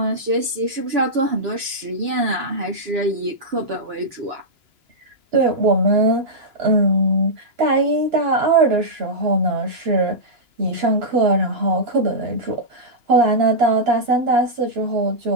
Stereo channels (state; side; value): late; left; 2.9 ms